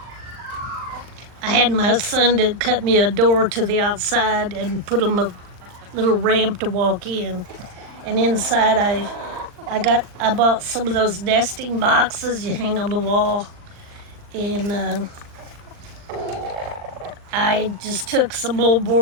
I had my son to cut me a door to the outside and put him a little ramp to walk in. And inside I bought some of those nesting boxes you hang on the wall, and I just took some old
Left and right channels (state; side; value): late; left; 39 ms